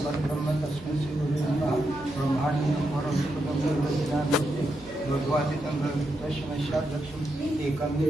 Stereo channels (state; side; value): normal; both; correlation 0.84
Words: परब्रह्म तस्मै श्री गुरुवे नमः. ब्रह्माण्डं भगवादितं तस्मै लक्ष्मी एकं